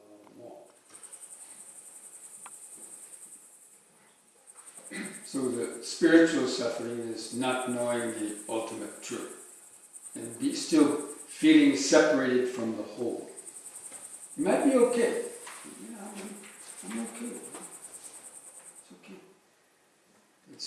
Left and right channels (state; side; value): identical; both; correlation 1.00